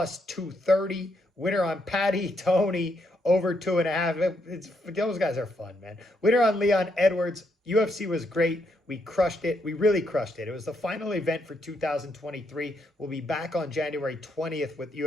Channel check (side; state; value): both; normal; correlation 0.77